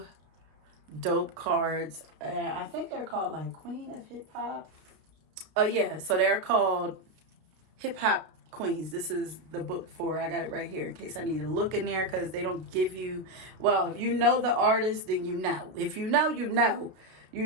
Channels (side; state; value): left; late; 32 ms